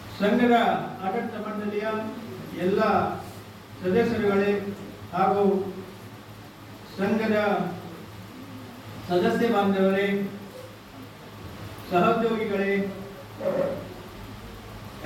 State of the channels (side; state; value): both; identical; correlation 1.00